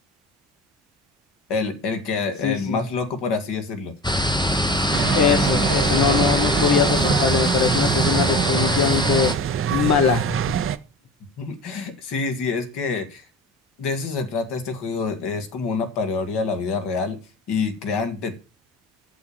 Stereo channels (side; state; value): both; normal; correlation 0.34